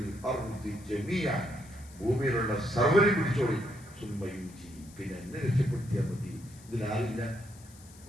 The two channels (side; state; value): left; noise; hiss, 22 dB below the sound